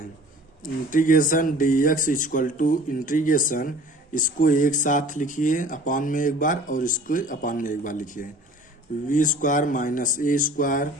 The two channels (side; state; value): both; normal; correlation 0.47